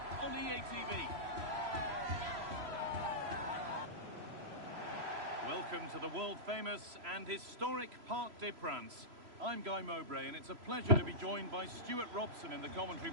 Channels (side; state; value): left; late; 3.0 ms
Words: on EA TV. Welcome to the world-famous and historic Parc des Princes. I'm Guy Mowbray, and it's a pleasure to be joined by Stuart Robson in the commentary